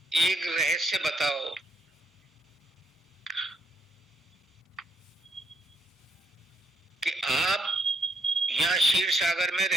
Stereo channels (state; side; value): normal; both; correlation 0.74